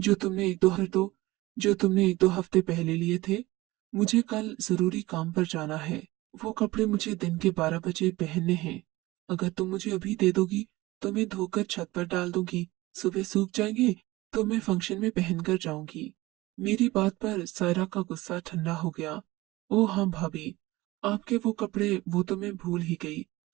तुमने एक दो हफ्ते पहले लिए थे। मुझे कल जरूरी काम पर जाना है। वो कपड़े मुझे दिन के 12 बजे पहनने हैं। अगर तुम मुझे अभी दे दोगी तो मैं धोकर छत पर डाल दूंगी। सुबह सूख जाएंगे तो मैं फंक्शन में पहनकर जाऊंगी। मेरी बात पर सायरा का गुस्सा ठंडा हो गया। ओ हाँ भाभी, आपके वो कपड़े वो तो मैं भूल ही गई।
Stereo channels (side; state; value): left; quieter; 19.4 dB